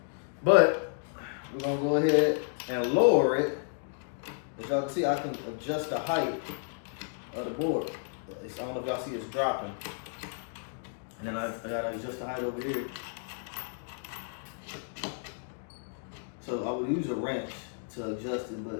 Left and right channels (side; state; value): right; silent; digital silence